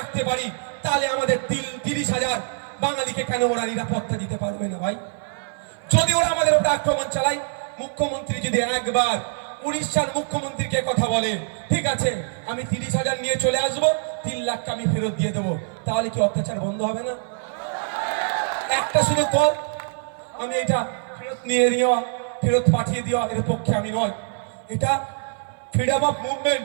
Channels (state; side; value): silent; left; 56 dB below the other